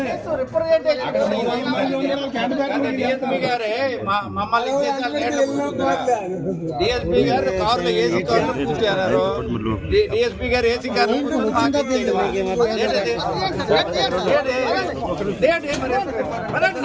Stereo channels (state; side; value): identical; both; correlation 1.00